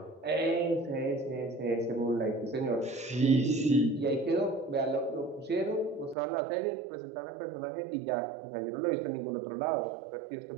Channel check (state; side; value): drops out; left; at 6.2 s